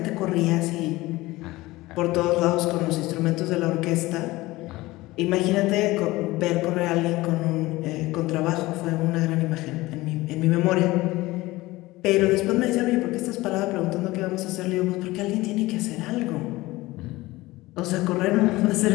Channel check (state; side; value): quieter; right; 19.4 dB